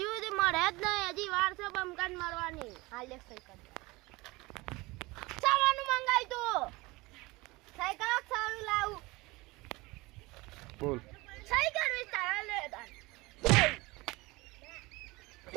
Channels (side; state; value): left; quieter; 22.6 dB